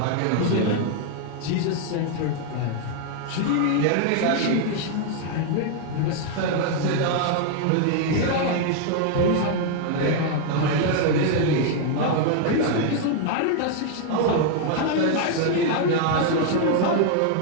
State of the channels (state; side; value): different; both; correlation 0.00